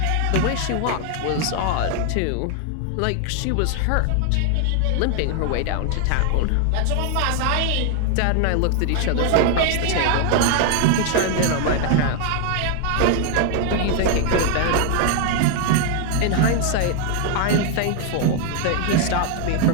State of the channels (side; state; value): both; different; correlation 0.00